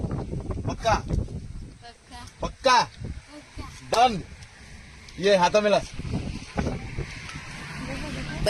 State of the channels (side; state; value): both; identical; correlation 1.00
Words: पक्का पक्का पक्का डन ये हाथ मिला